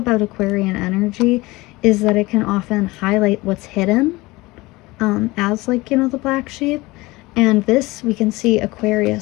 Aquarian energy is that it can often highlight what's hidden, as like, you know, the black sheep. And this, we can see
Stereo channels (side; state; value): right; quieter; 21.3 dB